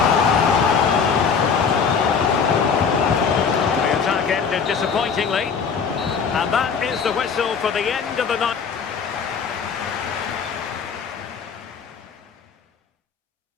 The attack ended disappointingly. And that is the whistle for the end of the night.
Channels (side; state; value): right; quieter; 6.1 dB